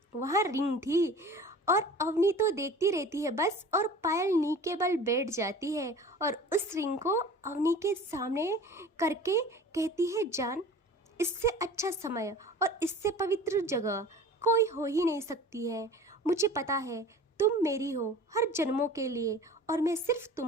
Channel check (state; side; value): normal; both; correlation 0.41